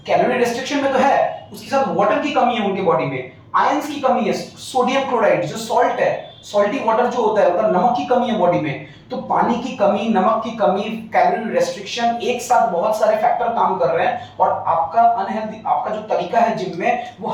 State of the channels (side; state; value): both; identical; correlation 1.00